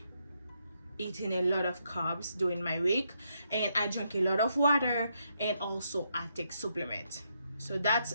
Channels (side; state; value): both; inverted; correlation -0.78